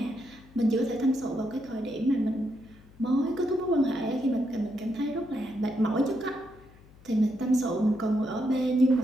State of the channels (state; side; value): noise; left; hum, 24 dB below the sound